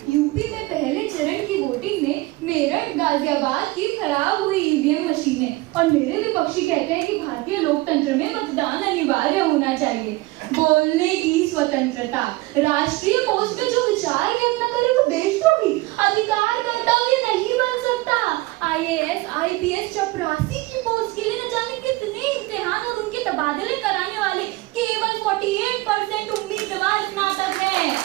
यूपी में पहले चरण की वोटिंग में मेरठ गाजियाबाद की खराब हुई ईवीएम मशीनें, और मेरे विपक्षी कहते हैं कि भारतीय लोकतंत्र में मतदान अनिवार्य होना चाहिए। बोलने की स्वतंत्रता, राष्ट्रीय पोस्ट में जो विचार व्यक्त न करे वो देशद्रोही, अधिकार कर्तव्य नहीं बन सकता। IAS IPS चपरासी की पोस्ट के लिए न जाने कितने इम्तिहान और उनके तबादले कराने वाले केवल 48% उम्मीदवार स्नातक हैं।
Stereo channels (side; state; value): left; quieter; 20.6 dB